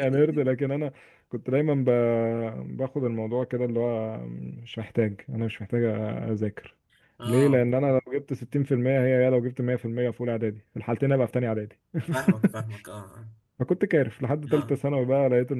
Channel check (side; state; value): both; identical; correlation 1.00